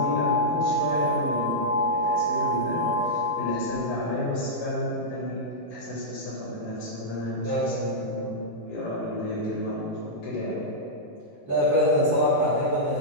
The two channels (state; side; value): normal; both; correlation -0.09